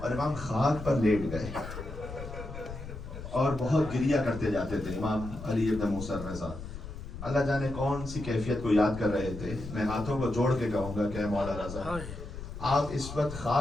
امام خاک پر لیٹ گئے اور بہت گریہ کرتے جاتے تھے امام علی ابن موسیٰ رضا۔ اللہ جانے کون سی کیفیت کو یاد کر رہے تھے۔ میں ہاتھوں کو جوڑ کے کہوں گا کہ اے مولا رضا، آپ اس وقت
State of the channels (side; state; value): left; noise; rumble, 10 dB below the sound